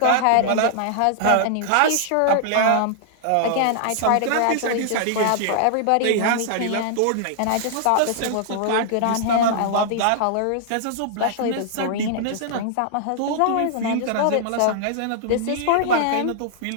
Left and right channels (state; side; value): different; both; correlation -0.01